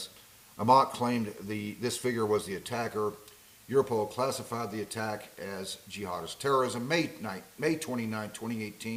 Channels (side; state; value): both; identical; correlation 1.00